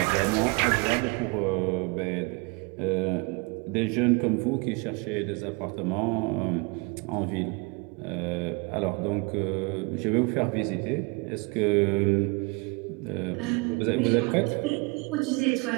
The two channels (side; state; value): left; quieter; 30.0 dB